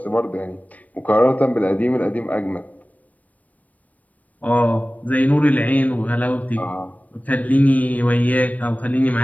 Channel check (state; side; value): late; right; 0.072 ms